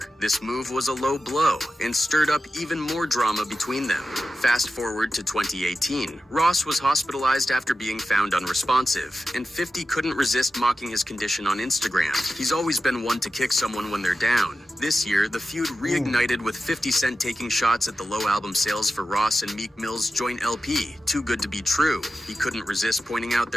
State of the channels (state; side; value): normal; both; correlation 0.92